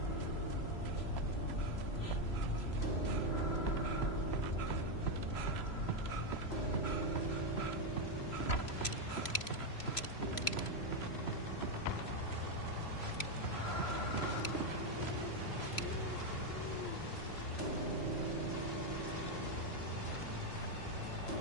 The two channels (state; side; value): late; right; 3.0 ms